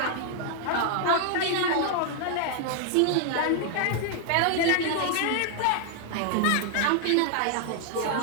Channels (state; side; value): different; both; correlation 0.00